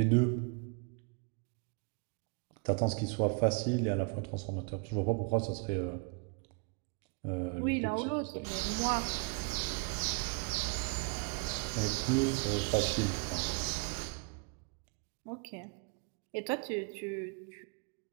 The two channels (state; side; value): quieter; left; 34.9 dB